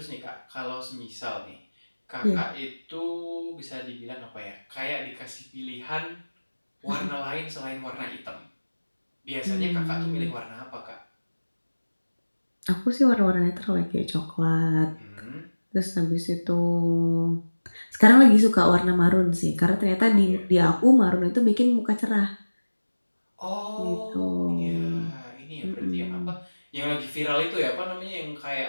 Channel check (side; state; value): both; inverted; correlation -1.00